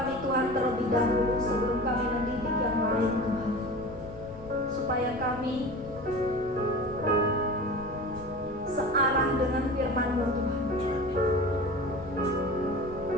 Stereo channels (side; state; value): left; noise; rumble, 17 dB below the sound